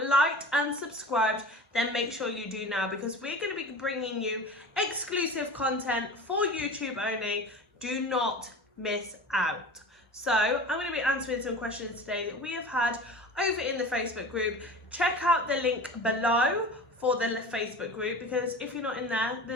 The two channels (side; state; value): both; normal; correlation 0.35